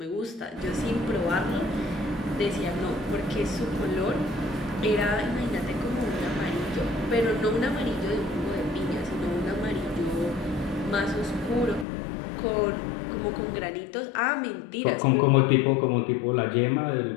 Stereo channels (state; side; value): drops out; right; at 11.9 s